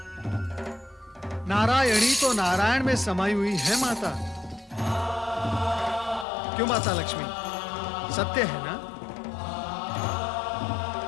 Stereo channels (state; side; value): drops out; right; at 6.2 s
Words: नारायणी तो नारायण में समाई हुई है माता। क्यों माता लक्ष्मी, सत्य है ना?